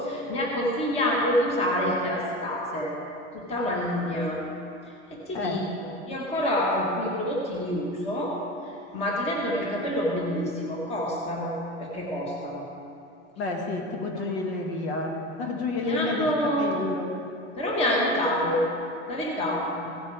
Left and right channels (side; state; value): both; normal; correlation 0.29